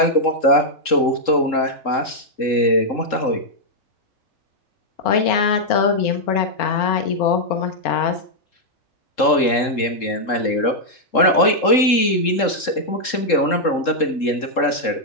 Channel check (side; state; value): right; late; 3.7 ms